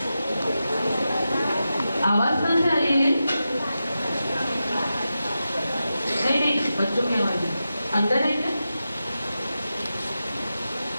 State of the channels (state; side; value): inverted; both; correlation -0.91